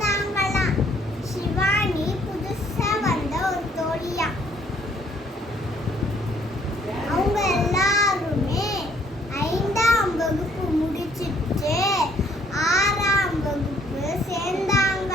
சிவானி புதுசா வந்த ஒரு தோழியா. அவங்க எல்லாருமே 5ஆம் வகுப்பு முடிச்சிட்டு 6ஆம் வகுப்பு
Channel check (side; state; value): both; normal; correlation 0.64